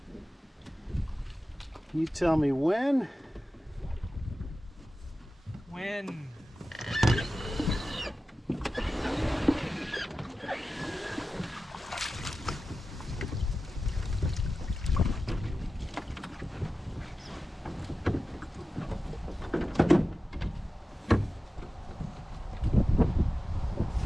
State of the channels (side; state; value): both; normal; correlation 0.94